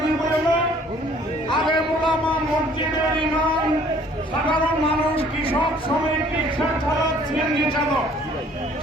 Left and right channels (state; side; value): normal; both; correlation 0.57